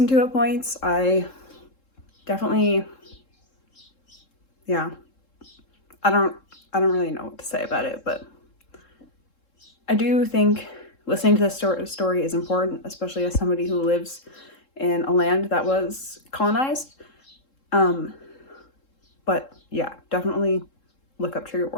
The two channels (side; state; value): right; late; 3.7 ms